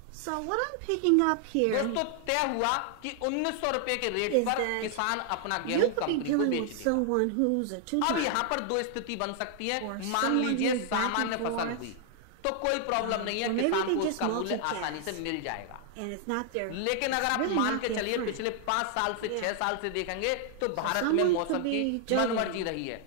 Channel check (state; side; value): different; both; correlation 0.00